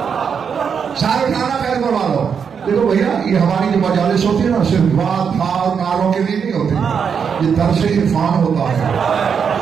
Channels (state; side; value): quieter; left; 6.7 dB